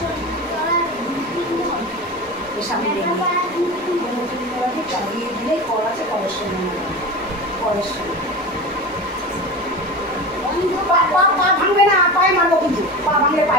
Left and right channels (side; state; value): both; normal; correlation 0.28